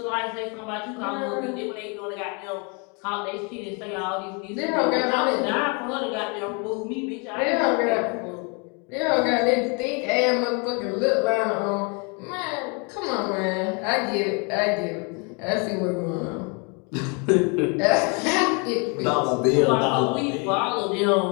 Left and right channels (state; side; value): quieter; right; 33.7 dB